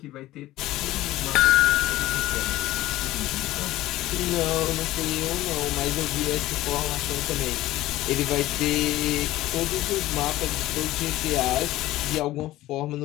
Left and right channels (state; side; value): quieter; right; 16.1 dB